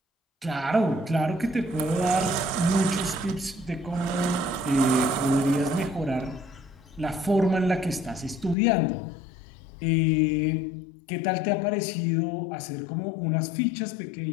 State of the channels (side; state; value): right; drops out; at 8.6 s